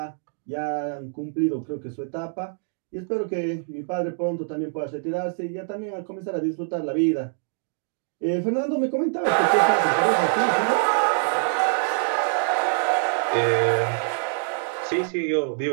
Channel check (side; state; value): left; silent; 62 dB below the other